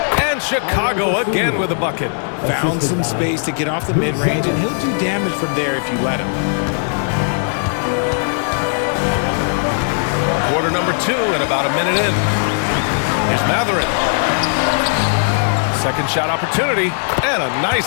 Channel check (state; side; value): silent; right; 57 dB below the other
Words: And Chicago again with a bucket. Found some space to get off the mid-range, and he'll do damage from there if you let him. Quarter number 2 and about a minute in. Here's Mathurin. Second shot opportunity. And a nice